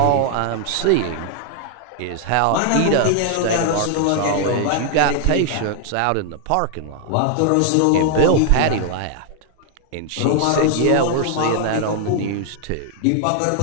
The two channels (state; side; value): different; both; correlation 0.00